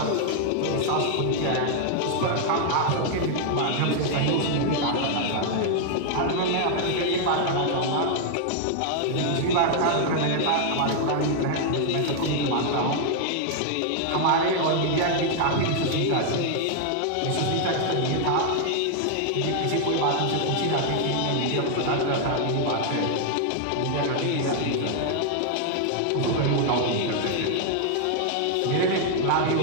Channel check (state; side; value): different; both; correlation 0.00